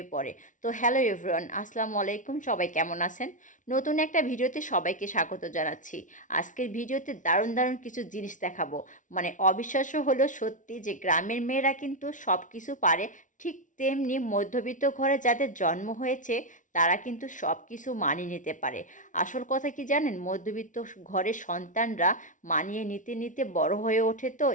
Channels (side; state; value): right; late; 0.37 ms